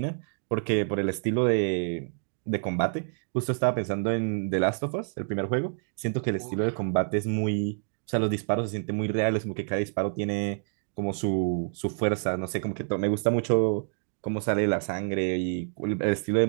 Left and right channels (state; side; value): silent; left; digital silence